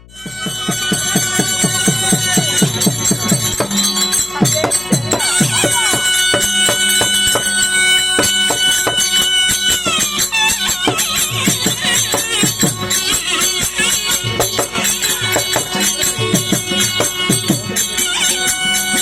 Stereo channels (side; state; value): left; noise; hum, 24 dB below the sound